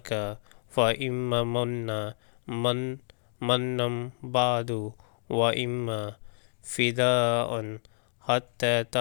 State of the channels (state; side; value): silent; right; 59 dB below the other